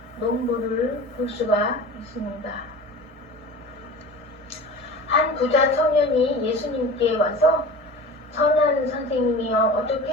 농부를 볼 수가 있습니다. 한 부자 청년이 예수님께 와서 선한 선생님이여 어떻게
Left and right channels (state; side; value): normal; both; correlation 0.37